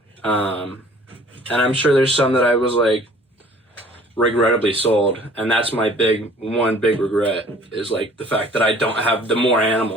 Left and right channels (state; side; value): normal; both; correlation 0.52